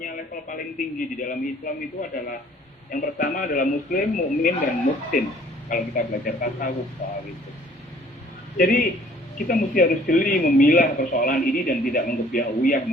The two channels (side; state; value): both; normal; correlation 0.56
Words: level paling tinggi di dalam Islam itu adalah yang pertama adalah Muslim, mukmin, dan muhsin. Kalau kita belajar tasawuf soal itu. Jadi kita mesti harus jeli memilah persoalan ini dan tidak menggebiah-uyah